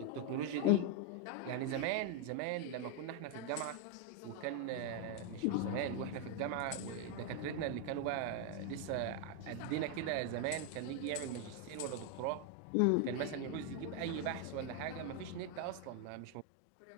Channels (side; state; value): both; different; correlation 0.01